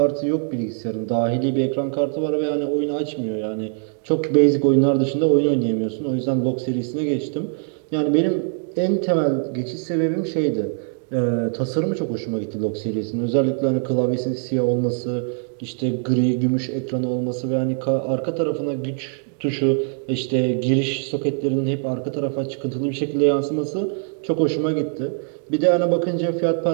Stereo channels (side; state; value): left; silent; 58 dB below the other